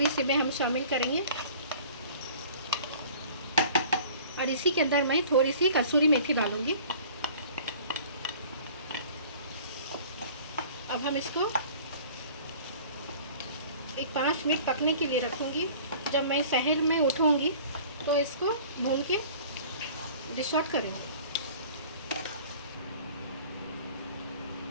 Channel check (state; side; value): inverted; both; correlation -0.47